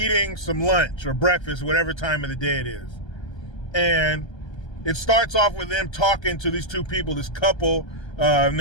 some lunch or breakfast, whatever time of the day it is. And it starts off with them talking to these two people, this couple in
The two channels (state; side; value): late; right; 1.3 ms